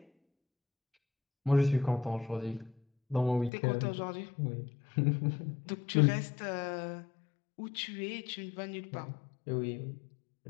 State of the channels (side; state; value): right; drops out; at 3.5 s